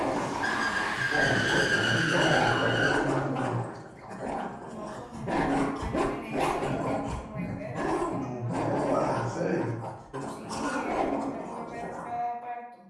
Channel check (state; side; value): identical; both; correlation 1.00